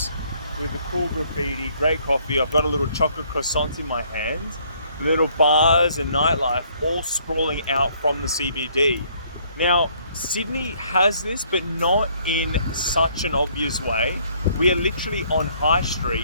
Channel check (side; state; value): both; inverted; correlation -0.64